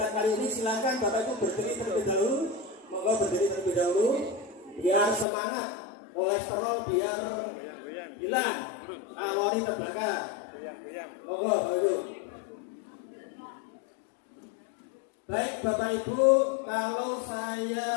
kali ini silakan Bapak Ibu berdiri terlebih dahulu. Monggo berdiri terlebih dahulu biar semangat. Kolesterol biar hilang, kalori terbakar. Monggo Bapak Ibu. Baik Bapak Ibu, kalau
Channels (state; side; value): drops out; right; at 5.2 s